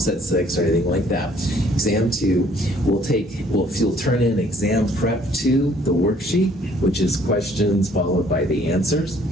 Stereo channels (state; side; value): normal; both; correlation 0.60